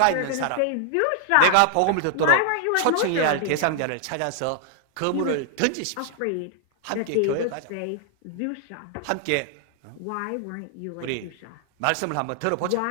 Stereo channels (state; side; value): different; both; correlation 0.00